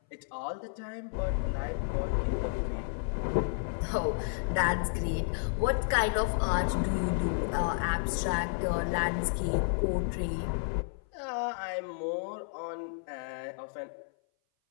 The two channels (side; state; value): right; silent; 57 dB below the other